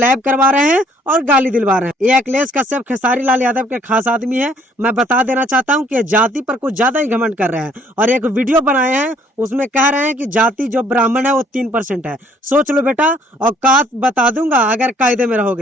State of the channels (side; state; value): both; normal; correlation 0.62